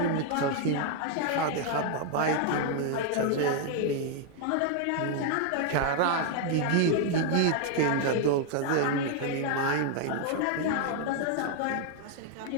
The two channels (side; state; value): both; different; correlation 0.00